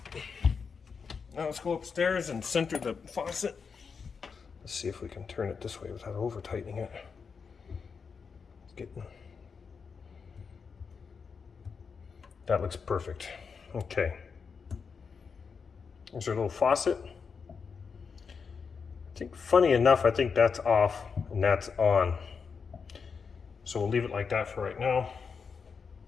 Now let's go upstairs and center the faucet. Let's see if we can turn it this way without over tightening it. That looks perfect. Okay. There's our little faucet. I think, funny enough, I think that's off and that's on. So we'll leave it like that for right now.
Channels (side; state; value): right; quieter; 5.7 dB